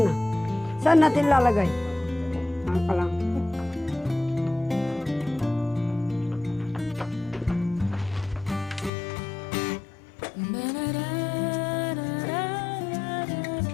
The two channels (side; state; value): right; drops out; at 8.9 s